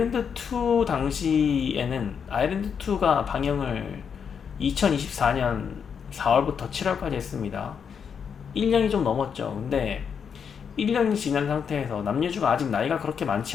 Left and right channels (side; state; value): right; quieter; 6.9 dB